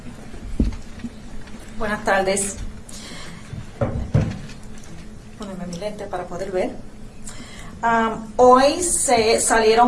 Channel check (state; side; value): identical; both; correlation 1.00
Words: Buenas tardes. Ponerme mi lente para poder ver. Hoy se